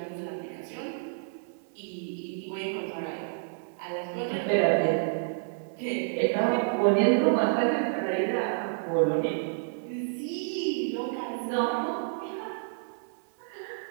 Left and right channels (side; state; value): left; silent; digital silence